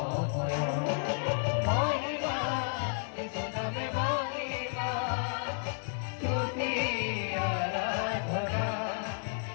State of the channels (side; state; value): right; silent; 56 dB below the other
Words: মহিমা যিশু নামে মহিমা স্তুতি আরাধনা